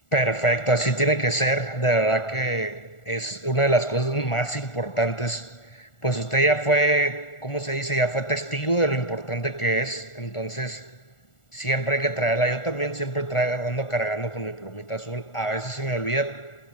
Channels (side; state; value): right; late; 1.4 ms